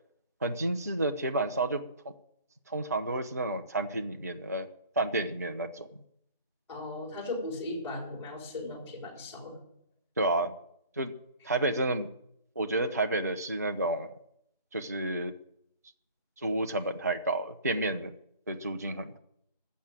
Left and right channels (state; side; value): inverted; both; correlation -0.46